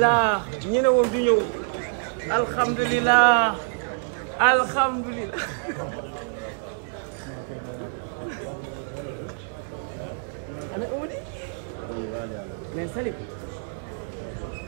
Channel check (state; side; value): silent; left; digital silence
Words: ñu ne woon du ñëw alhamdulilah mais Salim